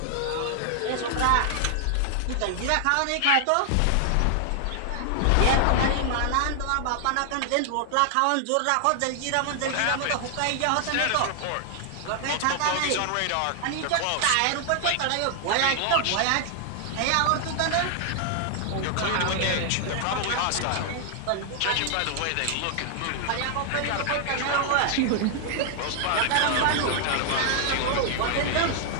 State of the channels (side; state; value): both; different; correlation 0.00